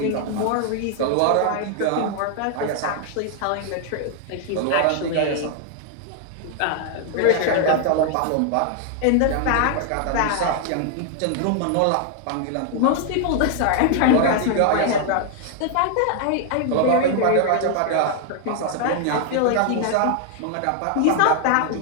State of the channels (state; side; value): different; both; correlation 0.00